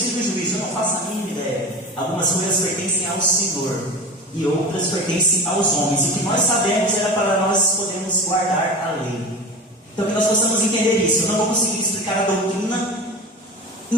e do juízo. Eu não faço a mínima ideia. Algumas coisas pertencem ao Senhor e outras pertencem aos homens. E o que nós sabemos era para nós podermos guardar a lei. Então que nós possamos entender isso. Eu não vou conseguir explicar a doutrina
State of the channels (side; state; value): both; normal; correlation 0.31